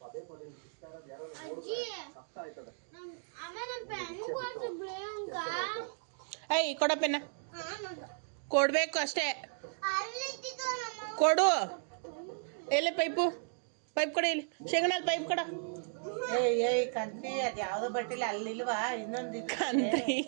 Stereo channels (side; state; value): left; silent; digital silence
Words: ಏಯ್ ಕೊಡಪ್ಪೆನ್ನ, ಕೊಡ್ಬೇಕು ಅಷ್ಟೇ. ಕೊಡು. ಎಲ್ಲಿ ಪೈಪು ಕೊಡ, ಇಲ್ಲಿ ಶೇಂಗಣ್ಣಲ್ಲಿ ಪೈಪ್ ಕೊಡ. ಕಂತಿ ಅದು ಯಾವ್ದೋ ಬಟ್ಟಿಲ್ಲ ಅಲ್ಲಿಲ್ವಾ? ಇನ್ನೊಂದು